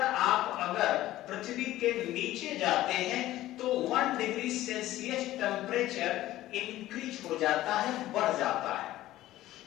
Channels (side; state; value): right; quieter; 15.2 dB